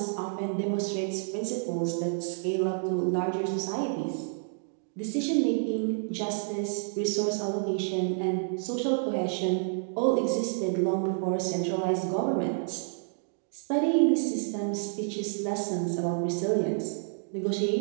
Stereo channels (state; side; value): silent; left; digital silence